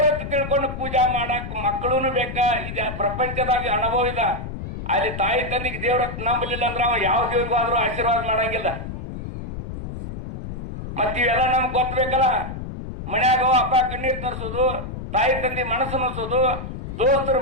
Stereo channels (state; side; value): noise; left; rumble, 8 dB below the sound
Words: ತಿಳ್ಕೊಂಡು ಪೂಜಾ ಮಾಡಕ್ ಮಕ್ಕಳೂನು ಬೇಕ. ಇದು ಪ್ರಪಂಚದಾಗ ಅನುಭವ ಇಲ್ಲ. ಅಲ್ಲಿ ತಾಯಿ ತಂದಿಗೆ ದೇವ್ರತ್ತ ನಂಬಲಿಲ್ಲ ಅಂದ್ರೆ ಅವ ಯಾವ ದೇವ್ರಿಗೂ ಆದ್ರೂ ಆಶೀರ್ವಾದ ಮಾಡಂಗಿಲ್ಲ. ಮತ್ತಿವೆಲ್ಲ ನಮ್ಗೆ ಗೊತ್ತಬೇಕಲ್ಲ. ಮನ್ಯಾಗ ಅಪ್ಪ ಕಣ್ಣೀರ್ ತರಿಸೋದು, ತಾಯಿ ತಂದಿ ಮನಸ್ಸು ನೋಸೋದು, ದೋಸ್ತರು